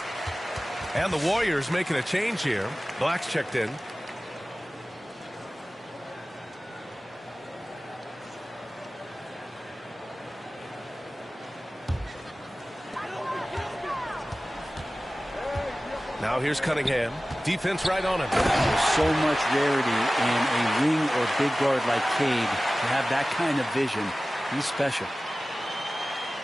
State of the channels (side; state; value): both; normal; correlation 0.97